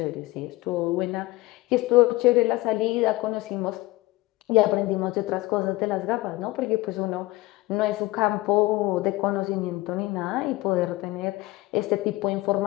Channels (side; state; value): right; quieter; 20.0 dB